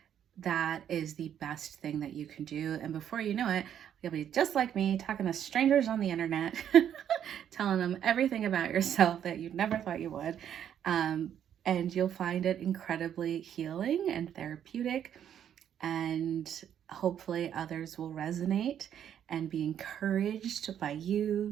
That is the best thing that you can do. And before you know it, you'll be just like me, talking to strangers on the internet, telling them everything about yourself that you never thought you would. And you'll find it incredibly healing and therapeutic. And hopefully others will resonate and be encouraged by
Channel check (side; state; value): left; quieter; 9.6 dB